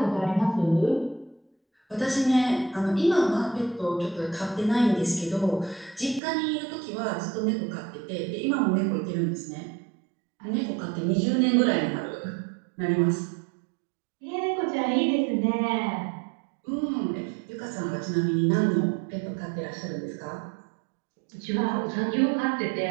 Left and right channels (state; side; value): drops out; left; at 6.2 s